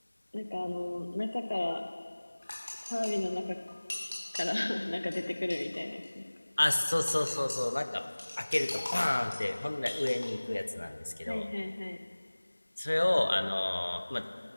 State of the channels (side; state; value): both; inverted; correlation -1.00